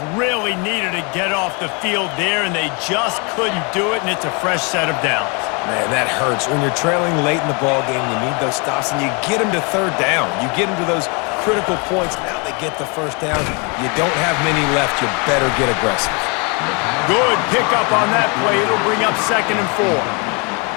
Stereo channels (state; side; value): quieter; right; 32.6 dB